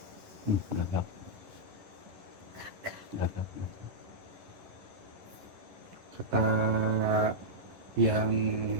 Gagap. Kata yang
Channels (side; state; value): left; late; 11 ms